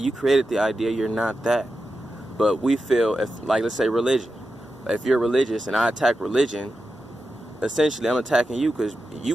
created the idea. You're not that. But we feel, if, like, let's say religion. If you're religious and I attack religion, essentially I'm attacking you because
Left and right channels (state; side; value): normal; both; correlation 0.90